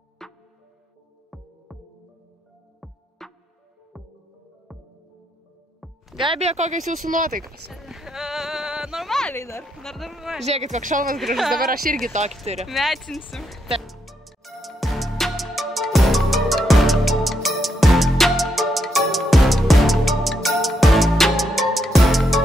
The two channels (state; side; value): normal; both; correlation 0.79